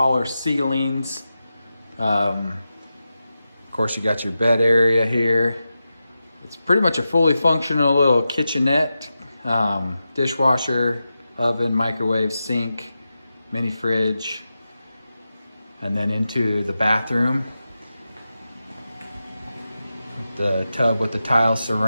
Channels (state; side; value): inverted; both; correlation -0.91